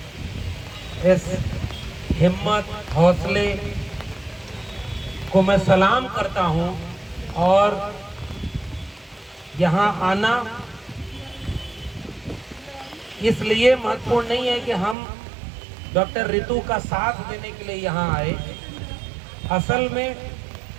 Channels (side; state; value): left; drops out; at 15.0 s